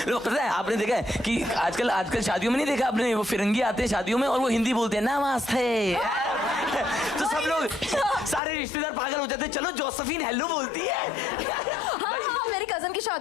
लोग पता है आपने देखा है कि आजकल शादियों में नहीं देखा आपने, वो फिरंगी आते हैं शादियों में और वो हिंदी बोलते हैं नमस्ते। तो सब लोग सारे रिश्तेदार पागल हो जाते हैं, चलो जोसेफिन हेलो बोलती है। हाँ, मेरी कजन की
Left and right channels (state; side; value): drops out; right; at 8.4 s